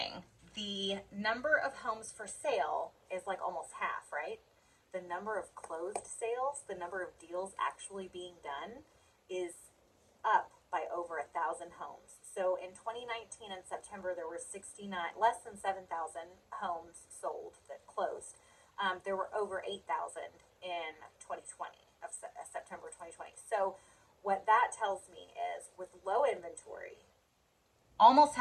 The number of homes for sale is like almost half, right? The number of closed sales, the number of deals actually being done, is up by over 1,000 homes. So in 2019 in September, there were 69, less than 7,000 homes sold that closed. There were over 8,000 in 2020 of September 2020. So what that tells me is with low inventory, almost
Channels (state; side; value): identical; both; correlation 1.00